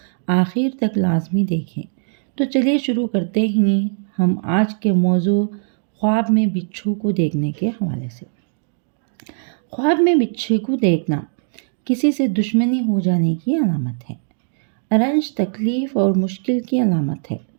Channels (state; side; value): silent; left; 66 dB below the other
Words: آخر تک لازمی دیکھیں۔ تو چلیے شروع کرتے ہیں ہم آج کے موضوع خواب میں بچھو کو دیکھنے کے حوالے سے۔ خواب میں بچھو کو دیکھنا کسی سے دشمنی ہو جانے کی علامت ہے، رنج، تکلیف اور مشکل کی علامت ہے۔